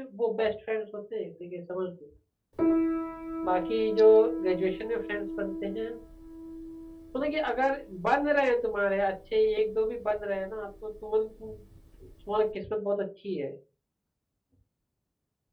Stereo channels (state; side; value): identical; both; correlation 1.00